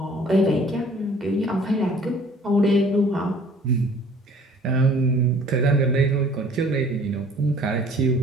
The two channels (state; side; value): normal; both; correlation 0.53